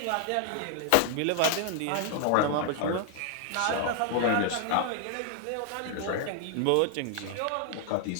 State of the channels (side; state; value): both; different; correlation 0.00